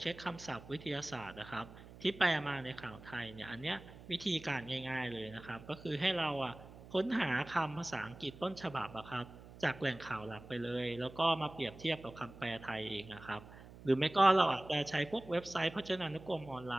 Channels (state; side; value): noise; right; hum, 18 dB below the sound